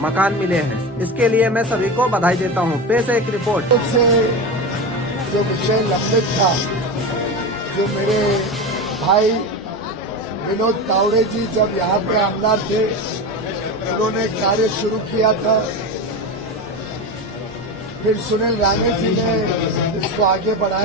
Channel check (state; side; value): normal; both; correlation 0.22